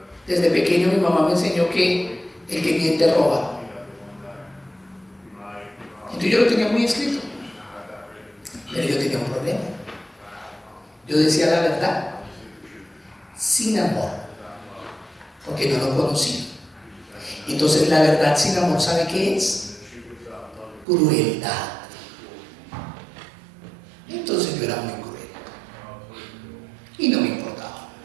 Desde pequeño mi mamá me enseñó que el que miente roba. Entonces yo lo tenía muy escrito. Pero yo tenía un problema. Yo decía la verdad sin amor, porque no lo conocía. Entonces la verdad sin amor, ¿sabe qué es? Crueldad. Entonces yo era muy cruel y no me importaba.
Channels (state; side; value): drops out; left; at 20.9 s